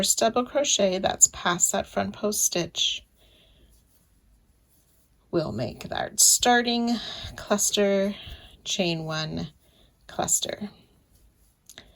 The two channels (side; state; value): both; identical; correlation 1.00